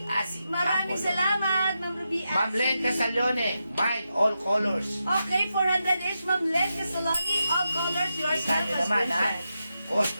Asi. Maraming Apple. salamat, Ma'am Ruby Asi. Ma'am Len Casalone, Mine All Colors. Okay, 400 each, Ma'am Len Casaloni, all colors, yours na, Kanya naman, ha? subscription.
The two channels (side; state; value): both; inverted; correlation -0.87